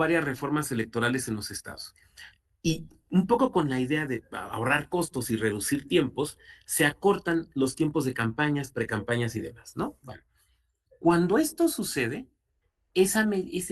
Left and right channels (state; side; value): identical; both; correlation 1.00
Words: reformas electorales en los estados. Y un poco con la idea de ahorrar costos y reducir tiempos, se acortan los tiempos de campañas, precampañas y demás, ¿no? Bueno, cuando esto sucede,